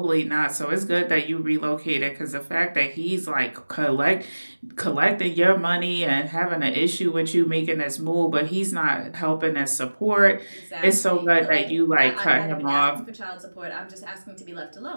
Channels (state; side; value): inverted; both; correlation -1.00